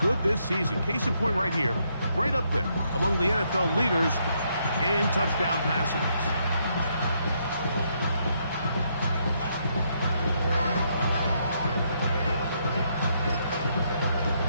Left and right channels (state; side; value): inverted; both; correlation -0.75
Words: this season. Case in point right here, right up there among the NFL leaders in touchdown passes.